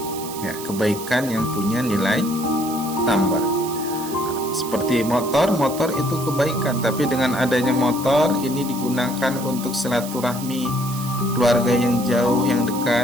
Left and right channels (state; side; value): noise; right; hiss, 12 dB below the sound